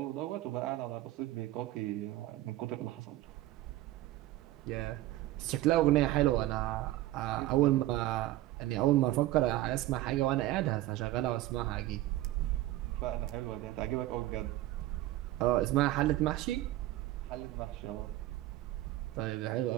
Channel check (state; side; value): quieter; left; 15.9 dB